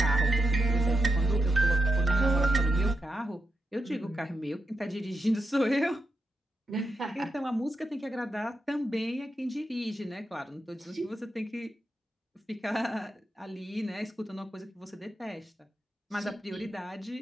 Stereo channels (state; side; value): normal; both; correlation 0.85